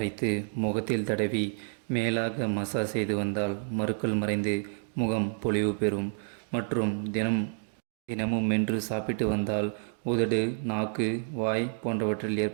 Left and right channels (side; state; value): left; silent; digital silence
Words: முகத்தில் தடவி மேலாக மசாஜ் செய்து வந்தால் மருக்கள் மறைந்து முகம் பொலிவு பெறும். மற்றும் தினமும் மென்று சாப்பிட்டு வந்தால் உதடு, நாக்கு, வாய் போன்றவற்றில்